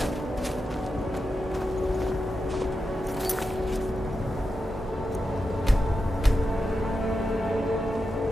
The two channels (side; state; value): both; normal; correlation 0.88